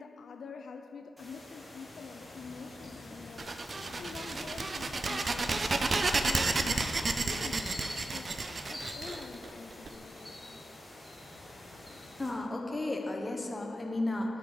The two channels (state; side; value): normal; both; correlation 0.91